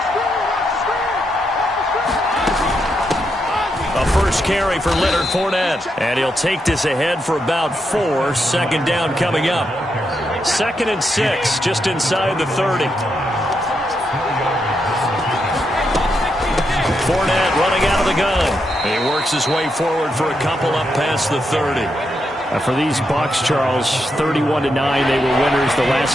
Carry for Leonard Fournette, and he'll take this ahead for about 4. Second down coming up. 2nd and 6, just inside the 30. Fournette running out of the gun. He works his way forward for a couple up past the 30. For these Bucs, Charles, 31-9, they were winners the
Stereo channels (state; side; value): normal; both; correlation 0.82